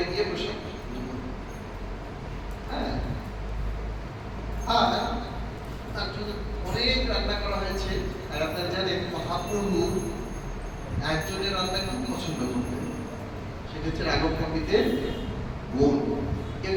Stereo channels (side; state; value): both; identical; correlation 1.00